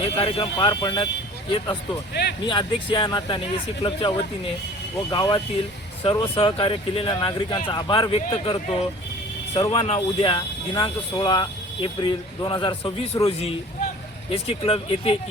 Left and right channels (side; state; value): both; normal; correlation 0.45